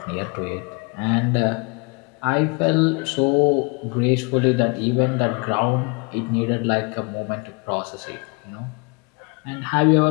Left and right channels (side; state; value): right; quieter; 32.2 dB